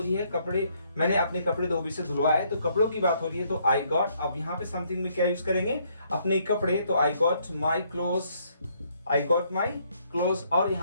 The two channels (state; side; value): inverted; both; correlation -0.69